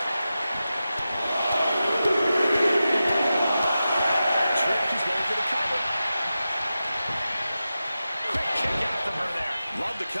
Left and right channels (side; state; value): both; inverted; correlation -0.92